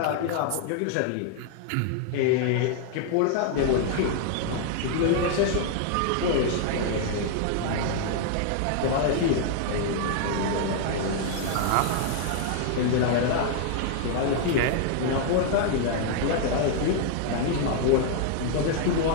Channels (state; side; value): different; both; correlation 0.00